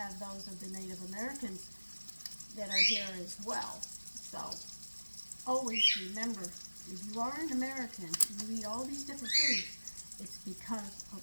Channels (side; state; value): both; inverted; correlation -1.00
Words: those of the Native Americans that are here as well. So always remember, if you are an American and you eat all these different foods, it's because